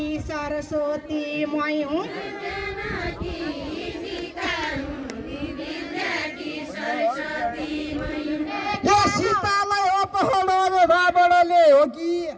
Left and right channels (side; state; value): both; identical; correlation 1.00